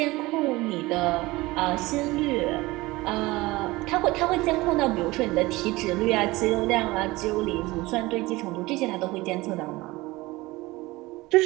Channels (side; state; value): left; quieter; 20.6 dB